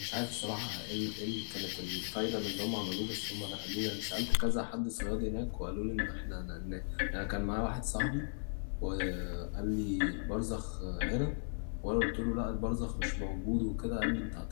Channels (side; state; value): right; silent; digital silence